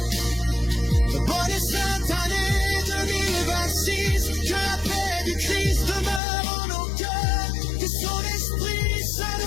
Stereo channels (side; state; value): right; drops out; at 6.2 s